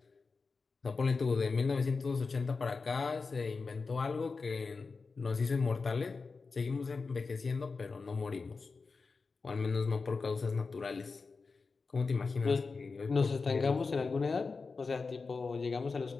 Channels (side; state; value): right; quieter; 4.4 dB